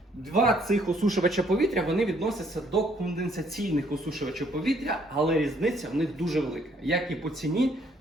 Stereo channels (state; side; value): normal; both; correlation 0.66